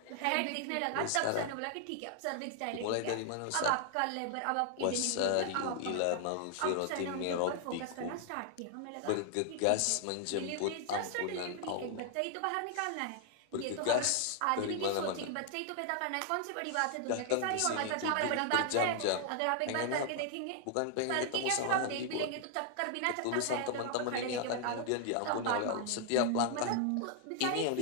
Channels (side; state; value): both; different; correlation 0.00